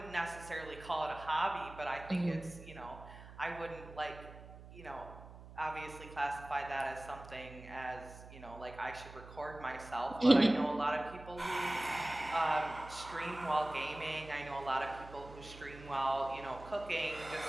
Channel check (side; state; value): right; noise; hum, 16 dB below the sound